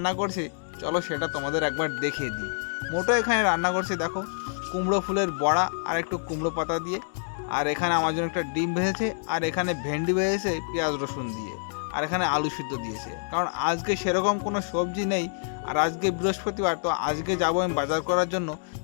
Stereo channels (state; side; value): silent; right; digital silence